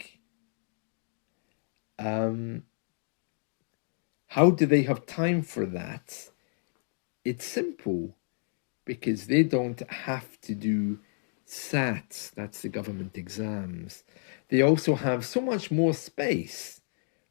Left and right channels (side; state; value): right; silent; digital silence